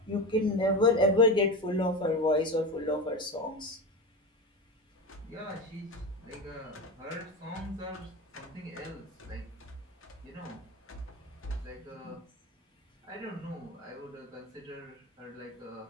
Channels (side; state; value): both; normal; correlation 0.23